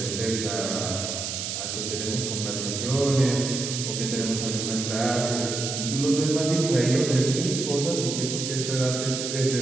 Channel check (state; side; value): noise; right; hiss, 4 dB below the sound